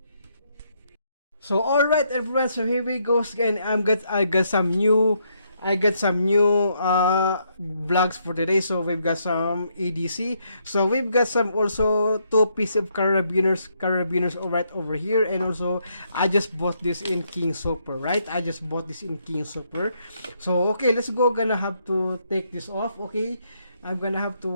So alright everyone, so here we go again. I got some new vlogs for today. So we've got some EDC. So we've got some also two pieces of carabiners right over here, and also I just bought this in King Super, right? I just bought this in King Super. So okay, let's go. Gonna have to take this off. Okay, I'm gonna have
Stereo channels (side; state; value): both; inverted; correlation -0.74